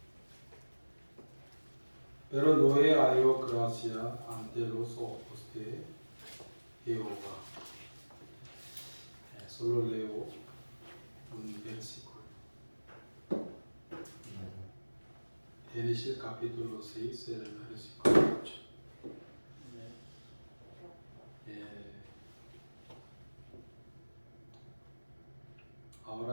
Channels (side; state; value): both; inverted; correlation -1.00